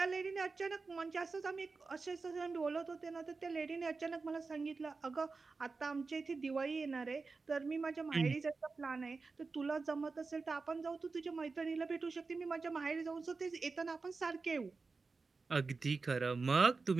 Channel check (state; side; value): quieter; left; 4.2 dB